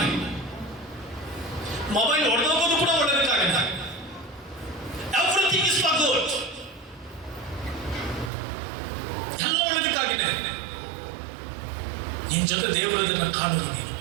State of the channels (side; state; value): left; drops out; at 8.3 s